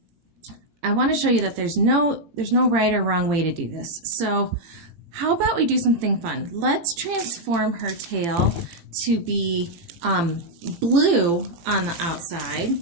I want to show you that there's no right or wrong way to do this. So how about we do something fun? Let's transform her tail to be blue on the outside,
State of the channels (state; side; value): late; left; 18 ms